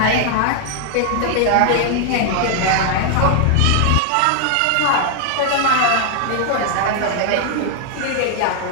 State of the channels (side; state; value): both; different; correlation 0.00